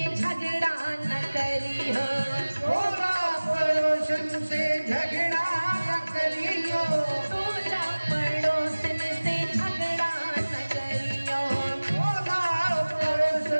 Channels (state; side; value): inverted; both; correlation -1.00